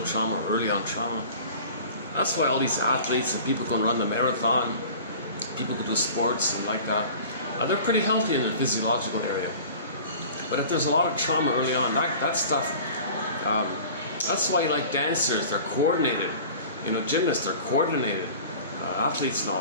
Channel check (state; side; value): inverted; both; correlation -0.42